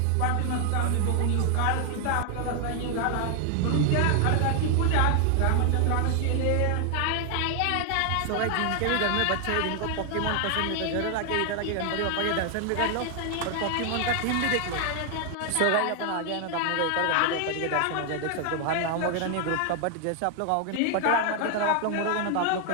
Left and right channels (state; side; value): different; both; correlation 0.00